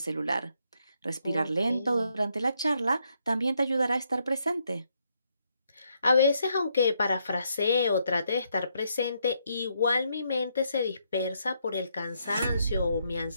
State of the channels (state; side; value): inverted; both; correlation -0.76